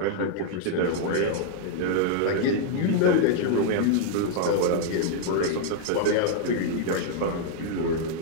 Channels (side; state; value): both; different; correlation -0.01